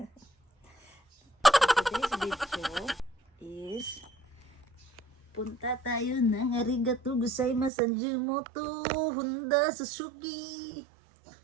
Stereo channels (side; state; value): left; drops out; at 7.7 s